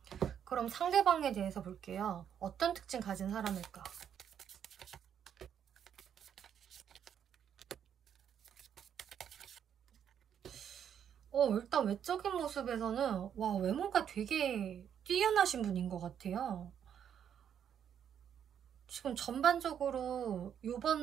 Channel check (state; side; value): quieter; left; 8.8 dB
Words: 그럼 상대방에 대해서 볼게요. 어떤 특징 가진 사람일까? 일단 외적인 모습에서는 외모가 되게 뛰어나신 분인 것 같아요. 지금 전반적으로